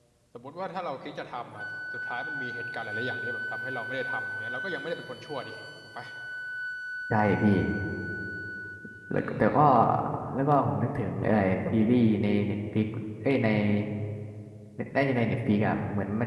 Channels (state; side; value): identical; both; correlation 1.00